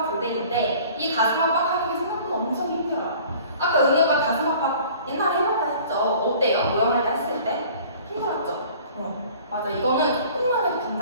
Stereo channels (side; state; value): both; inverted; correlation -0.48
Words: 교대기인데 이 가슴 압박